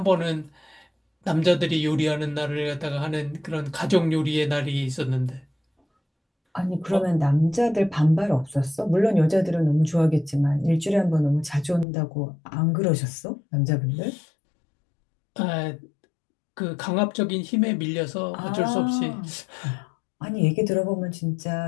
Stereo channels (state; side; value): drops out; right; at 11.9 s